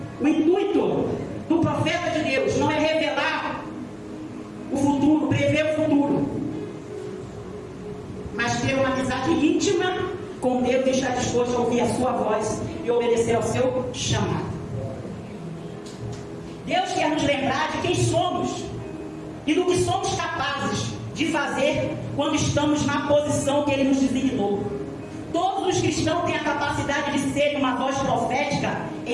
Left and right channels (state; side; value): identical; both; correlation 1.00